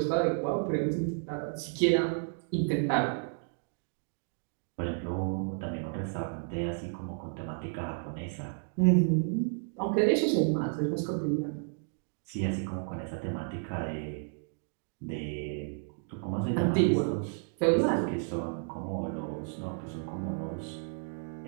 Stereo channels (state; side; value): silent; left; 56 dB below the other